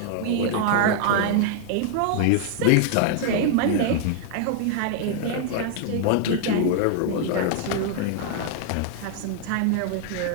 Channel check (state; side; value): different; both; correlation 0.00